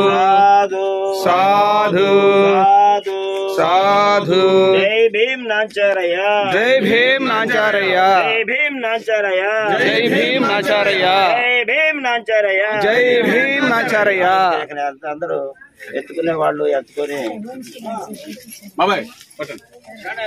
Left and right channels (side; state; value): both; identical; correlation 1.00